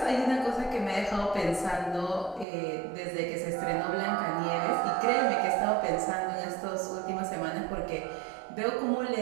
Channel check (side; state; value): left; drops out; at 2.5 s